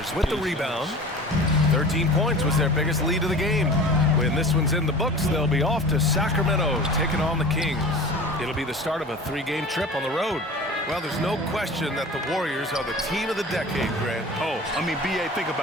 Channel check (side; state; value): both; normal; correlation 0.38